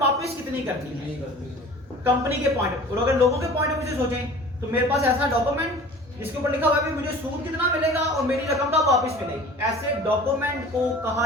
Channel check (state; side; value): normal; both; correlation 0.43